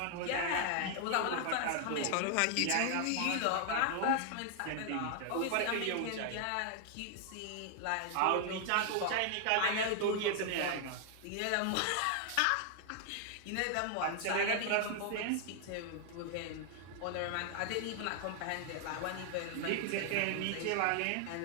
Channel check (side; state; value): both; different; correlation 0.00